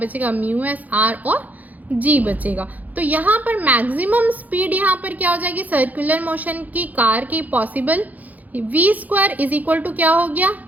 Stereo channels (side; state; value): left; late; 0.079 ms